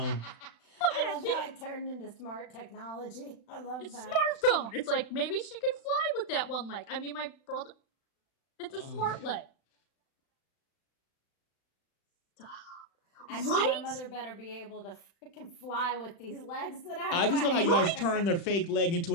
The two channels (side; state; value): right; late; 35 ms